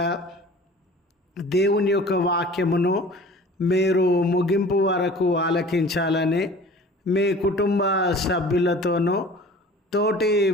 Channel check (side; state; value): both; normal; correlation 0.44